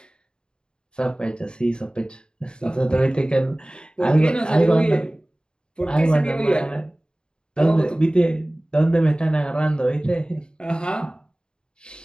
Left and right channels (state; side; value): late; right; 0.049 ms